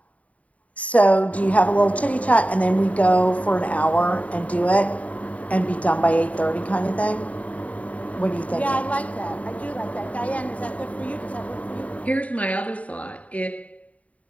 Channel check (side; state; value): right; late; 0.068 ms